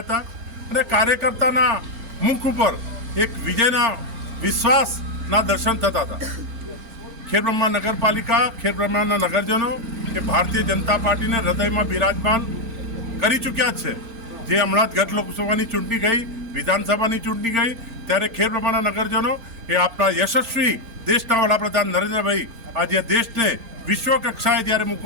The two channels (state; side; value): late; left; 4.4 ms